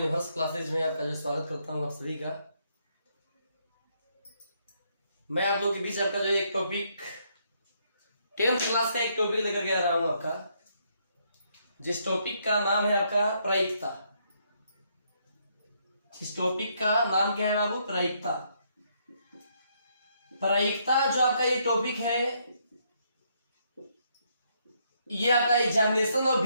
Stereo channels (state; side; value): inverted; both; correlation -0.73